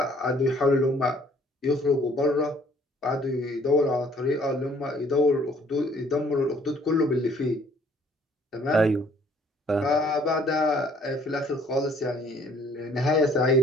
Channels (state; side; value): normal; both; correlation 0.60